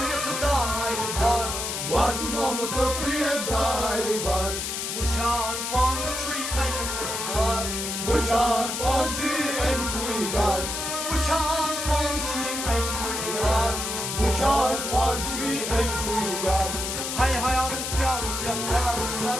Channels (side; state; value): left; noise; hiss, 3 dB below the sound